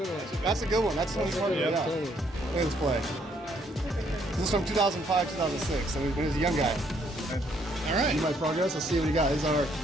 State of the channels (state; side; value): normal; both; correlation 0.69